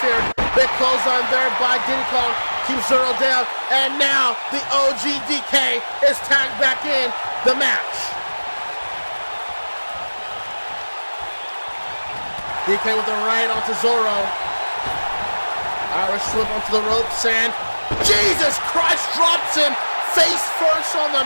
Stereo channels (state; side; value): inverted; both; correlation -1.00